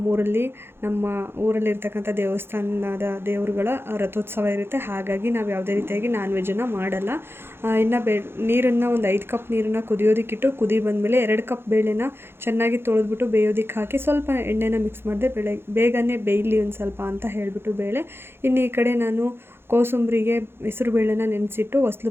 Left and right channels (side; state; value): left; late; 0.11 ms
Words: ಊರಲ್ಲಿರ್ತಕ್ಕಂಥ ದೇವಸ್ಥಾನದ ದೇವರುಗಳ ರಥೋತ್ಸವ ಇರುತ್ತೆ. ಹಾಗಾಗಿ ನಾವು ಯಾವುದೇ ರೀತಿಯಾಗಿ ನಾನ್ ವೆಜ್ಜನ್ನು ಮಾಡಲ್ಲ. ಇನ್ನು ನೀರನ್ನು ಒಂದು 5 ಕಪ್ ನೀರನ್ನು ಕುದಿಯೋದಕ್ಕಿಟ್ಟು ಕುದಿ ಬಂದಮೇಲೆ 2 ಕಪ್ ಬೇಳೆನ ಚೆನ್ನಾಗಿ ತೊಳೆದ್ಬಿಟ್ಟು ಬೇಯೋದಕ್ಕೆ ಹಾಕಿ ಸ್ವಲ್ಪ ಎಣ್ಣೆನ ಮಿಕ್ಸ್ ಮಾಡಿದೆ. ಬೇಗನೆ ಬೇಯಲಿ ಒಂದು ಸ್ವಲ್ಪ ಅಂತ ಹೇಳಿಬಿಟ್ಟು ಬೇಳೆ. ಇನ್ನು ಈ ಕಡೆ ನಾನು ಕೋಸಂಬರಿಗೆ ಹೆಸರು ಬೇಳೆನ ನೆನೆಸಿಟ್ಟು ಹೊಸ್ಲು